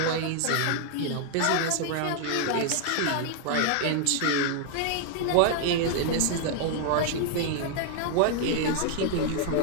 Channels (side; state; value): both; different; correlation 0.00